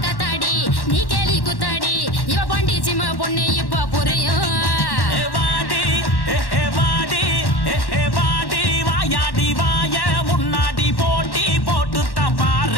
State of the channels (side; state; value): right; late; 1.1 ms